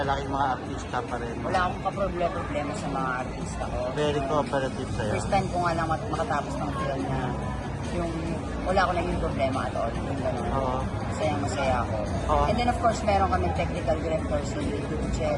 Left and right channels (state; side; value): identical; both; correlation 1.00